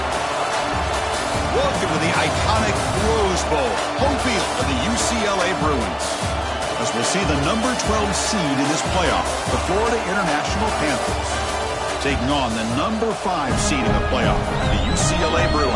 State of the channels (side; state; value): both; identical; correlation 1.00